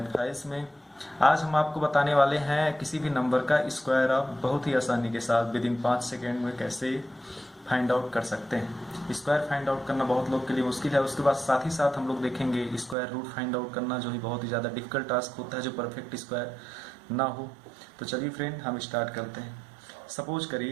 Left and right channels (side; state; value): left; drops out; at 13.0 s